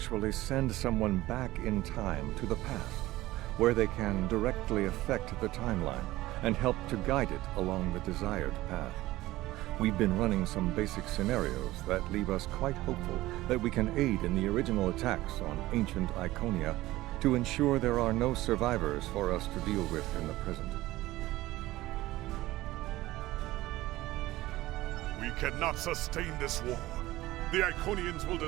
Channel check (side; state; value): left; quieter; 17.3 dB